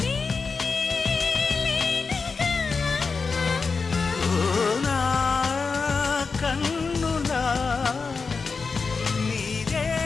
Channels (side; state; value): right; quieter; 4.7 dB